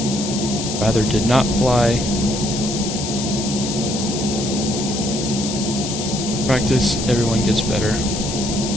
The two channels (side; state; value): left; noise; hiss, 6 dB below the sound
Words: rather did not fly. Practice, everyone gets better.